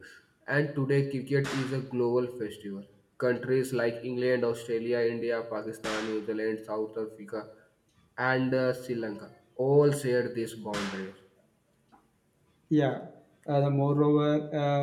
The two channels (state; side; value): identical; both; correlation 1.00